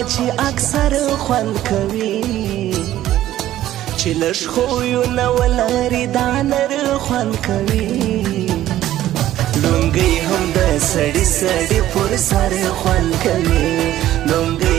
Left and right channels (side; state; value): left; quieter; 13.5 dB